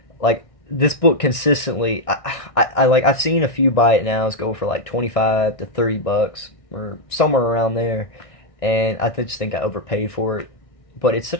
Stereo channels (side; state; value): right; late; 1.6 ms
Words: like, this book consistently, I've seen a few buy it nows go for like $25 to $30 or somewhere around there, and I just think I overpaid for it. But it's